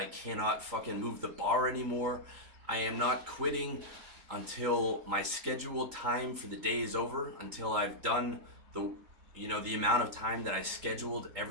cannot fucking move the bar anymore. I am not quitting until my scheduled time for the day is over, until I've done the amount of time that I scheduled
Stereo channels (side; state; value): left; late; 3.8 ms